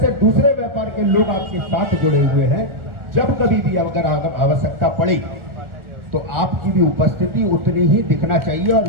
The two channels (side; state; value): left; late; 1.4 ms